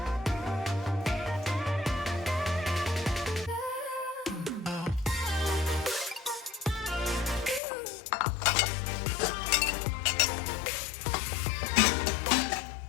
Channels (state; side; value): drops out; right; at 7.6 s